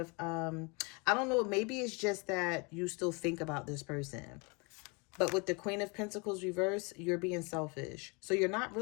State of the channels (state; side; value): quieter; right; 30.5 dB